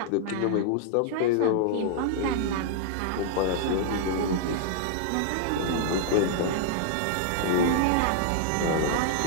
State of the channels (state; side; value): different; both; correlation -0.01